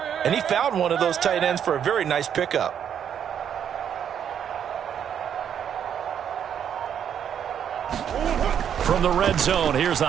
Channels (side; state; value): left; quieter; 8.7 dB